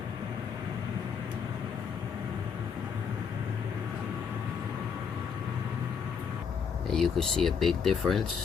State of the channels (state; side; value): quieter; right; 6.6 dB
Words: And you could see a big